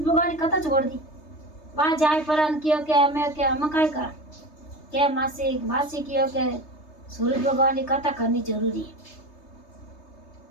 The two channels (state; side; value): late; right; 3.3 ms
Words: कथा छोड़ दी वहाँ जाए पर क्यों के हमें कहीं कर के मासी क्यों के सूरज भगवान की कथा करनी जरूरी है